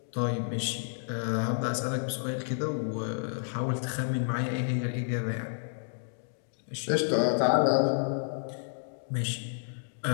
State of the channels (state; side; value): silent; right; 57 dB below the other